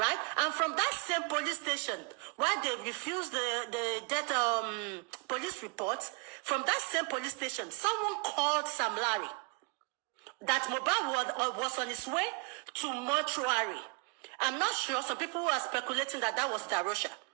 And from that same police station, while they refused the death police reports, from that same police station, someone called Sam Larry that Muhbad was on his way to mortuary. I'm not sure. Some people are speculating that was Darosha.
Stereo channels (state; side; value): quieter; left; 31.9 dB